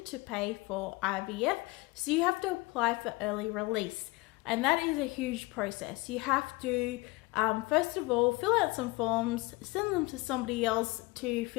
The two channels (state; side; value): quieter; right; 23.2 dB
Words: to pay for IVF. So you have to apply for early release. And that is a huge process. You have to, first of all, fill out some forms, send them to somebody else to